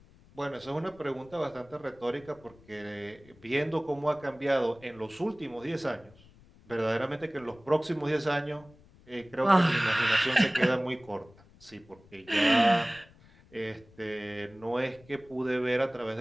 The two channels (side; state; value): left; noise; rumble, 26 dB below the sound